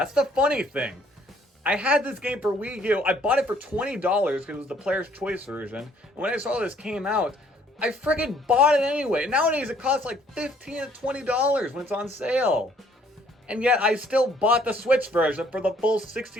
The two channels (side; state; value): both; normal; correlation 0.62